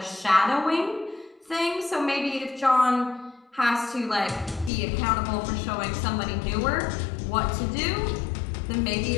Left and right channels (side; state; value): right; drops out; at 4.7 s